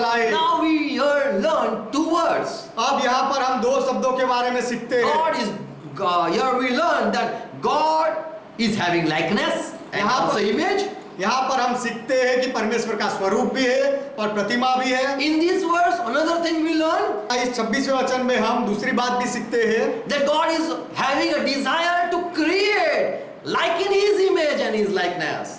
Now we here learn two words. अब यहाँ पर हम दो शब्दों के बारे में सीखते हैं। Here we learn that God is having likeness and also image. यहाँ पर हम सीखते हैं कि परमेश्वर का स्वरूप भी है और प्रतिमा भी है। In this verse, another thing we learn इस 26वें वचन में हम दूसरी बात भी सीखते हैं that God is having a desire to create like in His image and His likeness.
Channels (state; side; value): identical; both; correlation 1.00